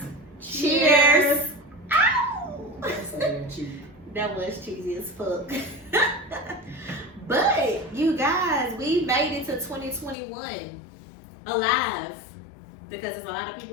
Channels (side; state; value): right; drops out; at 10.2 s